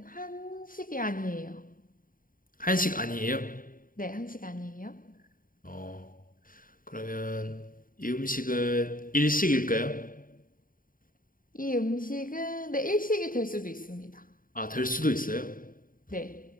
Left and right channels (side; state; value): right; late; 0.40 ms